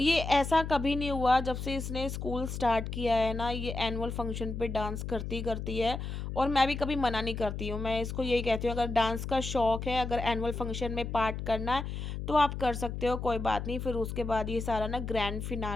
ऐसा कभी नहीं हुआ जब से इसने स्कूल स्टार्ट किया है ना, ये एनुअल फंक्शन पे डांस करती करती है। और मैं भी कभी मना नहीं करती हूँ, मैं इसको यही कहती हूँ, अगर डांस का शौक है, अगर एनुअल फंक्शन में पार्ट करना है तो आप कर सकते हो, कोई बात नहीं। फिर उसके बाद ये सारा ना ग्रैंड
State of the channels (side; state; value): left; noise; hum, 5 dB below the sound